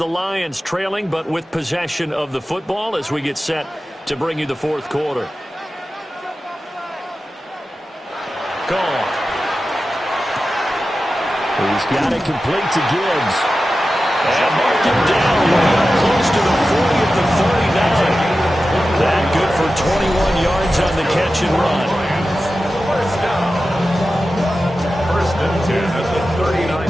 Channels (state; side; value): normal; both; correlation 0.93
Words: Lions trailing, but with possession of the football as we get set to bring you the 4th quarter. Gone. He's got it complete to Gibbs. And marked him down way up close to the 40 at the 39. That good for 21 yards on the catch and run. 1st down. 1st and 10 at the